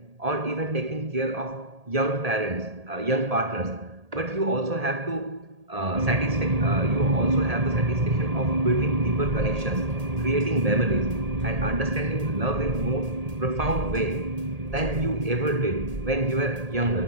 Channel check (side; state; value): left; late; 1.8 ms